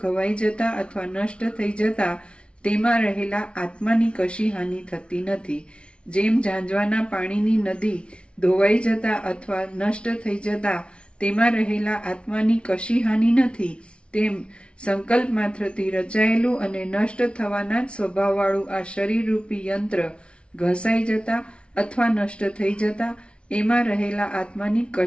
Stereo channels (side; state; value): right; late; 0.059 ms